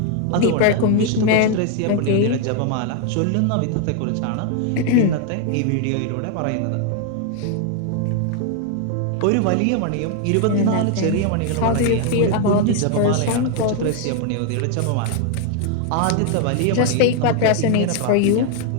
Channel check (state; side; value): different; both; correlation 0.00